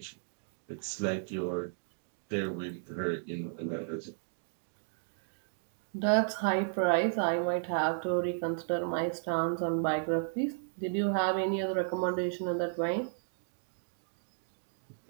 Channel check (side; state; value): left; silent; digital silence